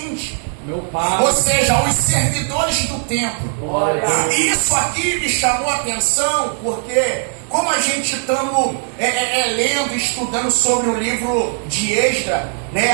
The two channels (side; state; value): left; silent; 58 dB below the other